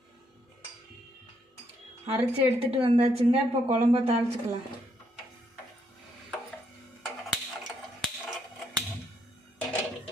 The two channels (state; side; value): normal; both; correlation 0.74